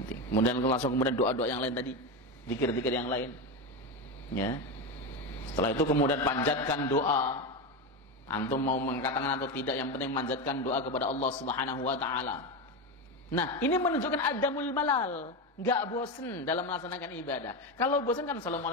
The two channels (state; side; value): normal; both; correlation 0.16